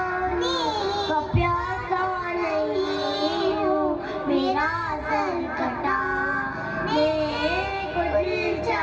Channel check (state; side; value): identical; both; correlation 1.00